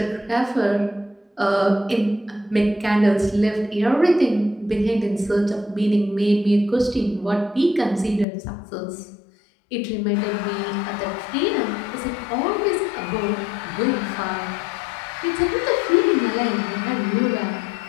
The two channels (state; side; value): drops out; right; at 8.2 s